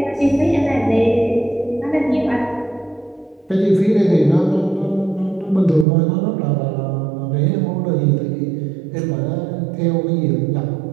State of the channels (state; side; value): drops out; left; at 5.9 s